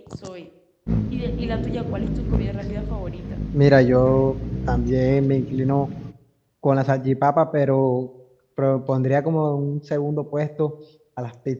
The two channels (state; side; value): identical; both; correlation 1.00